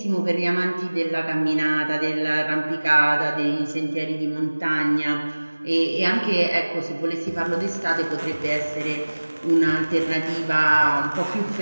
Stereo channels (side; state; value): both; inverted; correlation -1.00